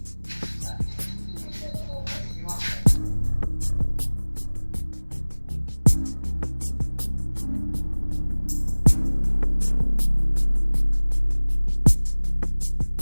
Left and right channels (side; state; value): both; inverted; correlation -1.00